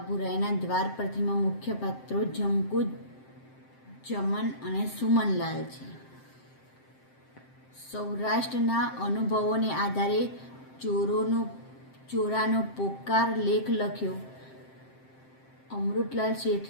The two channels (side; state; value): right; late; 7.7 ms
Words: બુરાઈના દ્વાર પરથીમાં મુખ્ય પાત્રો જમકુ, જમન અને સુમનલાલ છે. સૌરાષ્ટ્રના અનુભવોને આધારે ચોરાનો પોકાર લેખ લખ્યો. અમૃતલાલ